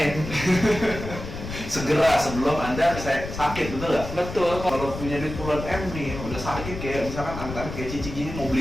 Segera sebelum Anda sakit, betul nggak? Betul. Kalau punya duit puluhan M nih, udah sakit kayak misalkan angka kayak Cici gini, mau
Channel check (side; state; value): left; noise; rumble, 8 dB below the sound